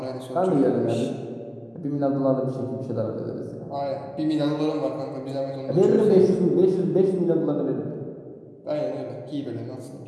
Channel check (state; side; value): identical; both; correlation 1.00